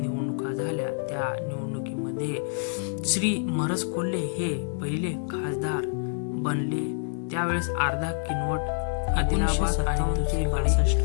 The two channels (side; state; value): right; silent; digital silence